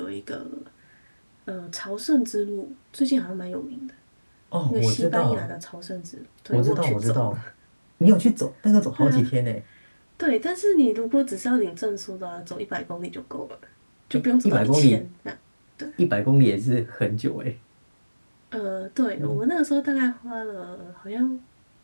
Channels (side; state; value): both; inverted; correlation -1.00